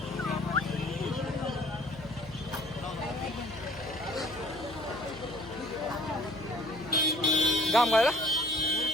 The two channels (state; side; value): noise; right; hum, 16 dB below the sound